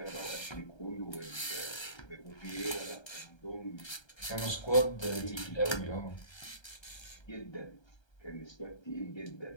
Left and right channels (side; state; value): right; late; 1.3 ms